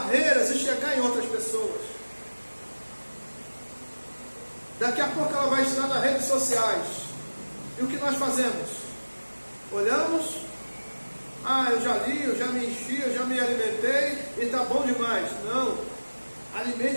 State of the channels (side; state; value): both; inverted; correlation -1.00